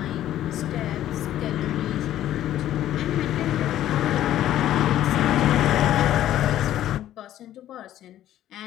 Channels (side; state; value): right; quieter; 12.5 dB